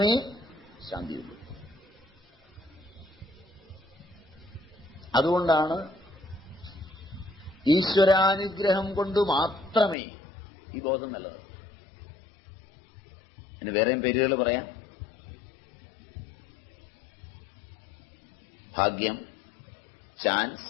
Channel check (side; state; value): right; drops out; at 10.0 s